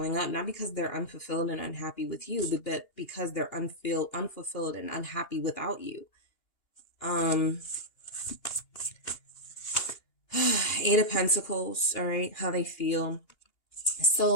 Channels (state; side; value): late; right; 2.8 ms